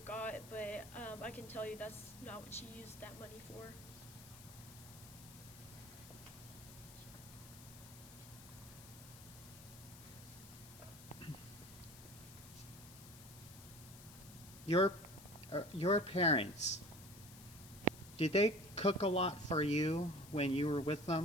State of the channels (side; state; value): left; noise; hiss, 17 dB below the sound